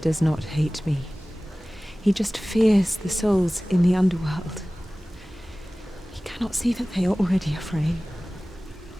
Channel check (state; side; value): normal; both; correlation 0.98